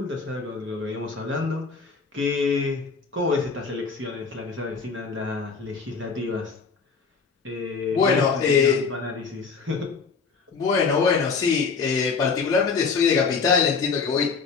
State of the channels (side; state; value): right; quieter; 5.1 dB